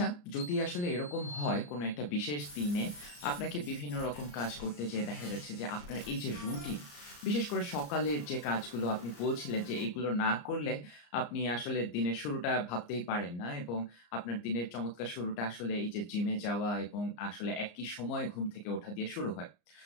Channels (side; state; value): right; late; 34 ms